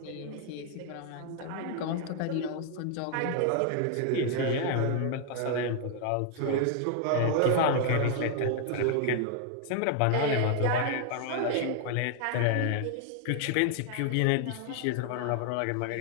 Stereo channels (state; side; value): different; both; correlation 0.00